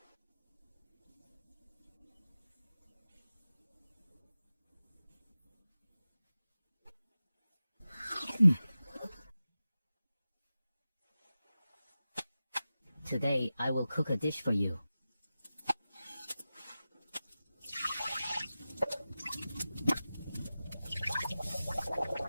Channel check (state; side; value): inverted; both; correlation -0.94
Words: Today, I will cook a dish for you.